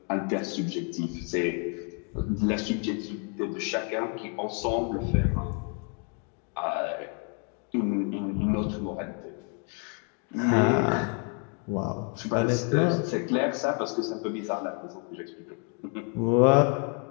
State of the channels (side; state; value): right; quieter; 38.9 dB